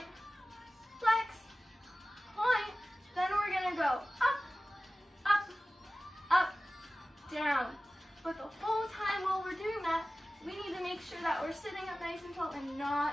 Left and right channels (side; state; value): both; normal; correlation 0.96